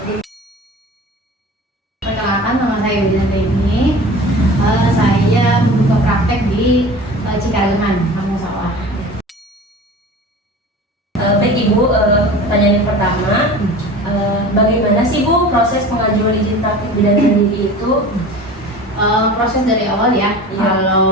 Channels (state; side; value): normal; both; correlation 0.38